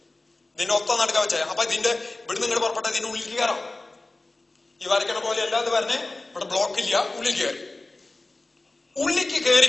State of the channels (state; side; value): quieter; right; 3.0 dB